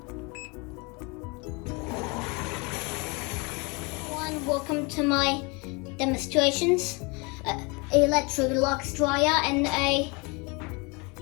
Welcome to my demonstrations. Electrolux dryer and a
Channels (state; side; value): quieter; right; 29.0 dB